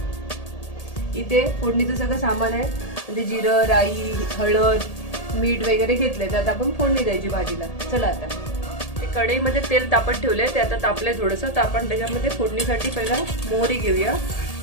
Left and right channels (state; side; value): late; right; 1.8 ms